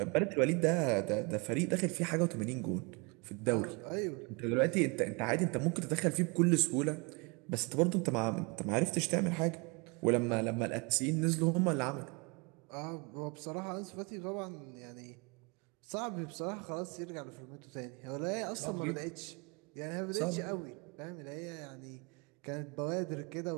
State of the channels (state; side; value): quieter; left; 30.1 dB